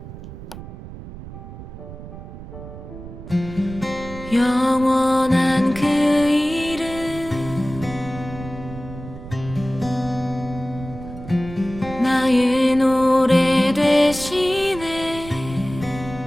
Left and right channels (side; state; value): right; noise; rumble, 13 dB below the sound